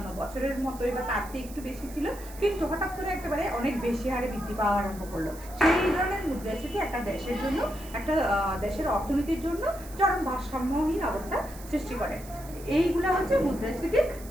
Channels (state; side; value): noise; right; hiss, 18 dB below the sound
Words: বছরের মতোই বা তার থেকে একটু বেশি ছিল, কিন্তু হঠাৎ করে একেবারে অনেক বেশি হারে বৃদ্ধি পাওয়া আরম্ভ করলো। সেই ধরনের মুদ্রাস্ফীতি একটা দেশের জন্য, একটা দেশের অর্থনীতির জন্য চরম ভারসাম্যহীন অবস্থা সৃষ্টি করে। এইগুলা হচ্ছে মুদ্রাস্ফীতির